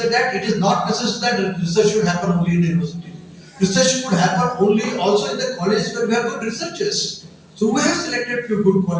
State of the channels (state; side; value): identical; both; correlation 1.00